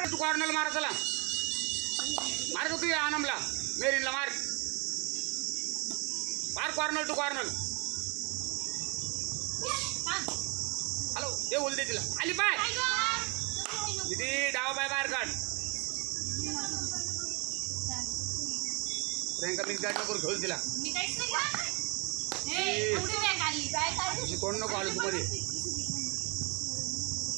तू कॉर्नरला मार. चला मार का तू या आनमला मेरीनला मार कॉर्नर टू कॉर्नर. हॅलो ते बोलते तिला आली पाय किती डावा पाय बाहेर काढ. प्रियंका मिक्स गाडी नको घेऊन तिला. कोण नको आलो तू मध्ये.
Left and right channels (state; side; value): quieter; left; 30.2 dB